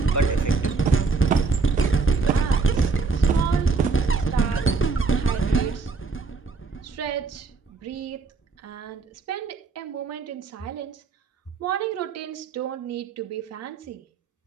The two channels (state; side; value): quieter; left; 4.4 dB